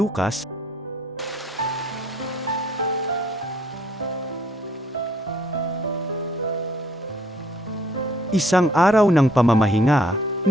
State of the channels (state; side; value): normal; both; correlation 0.62